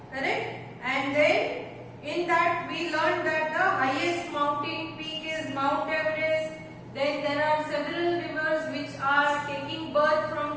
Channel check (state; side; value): identical; both; correlation 1.00